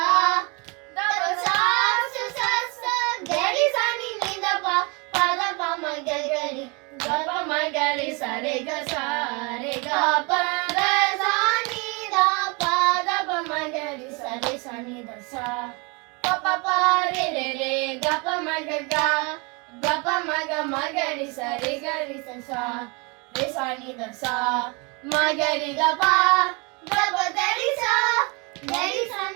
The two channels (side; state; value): left; quieter; 30.0 dB